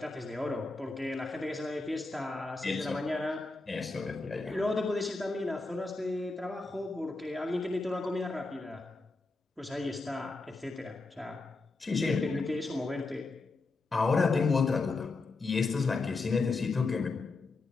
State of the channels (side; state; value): right; quieter; 3.6 dB